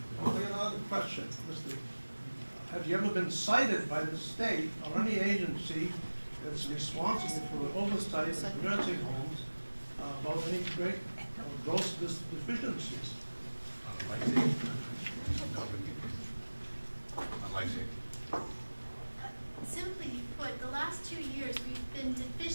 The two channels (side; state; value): both; inverted; correlation -1.00